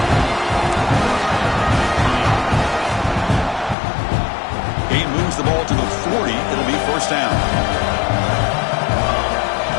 Gain moves the ball to the 40. It'll be first down.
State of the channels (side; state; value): right; drops out; at 3.8 s